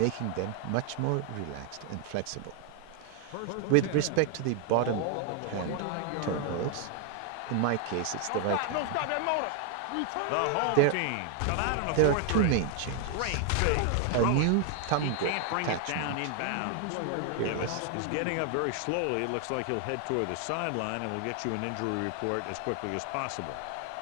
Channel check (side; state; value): both; different; correlation 0.00